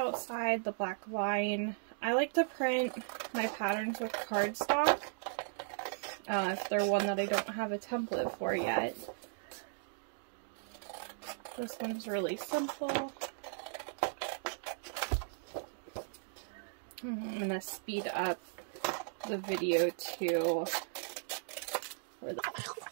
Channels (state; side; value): silent; left; digital silence